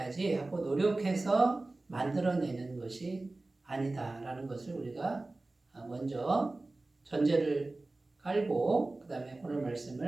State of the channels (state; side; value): quieter; left; 3.0 dB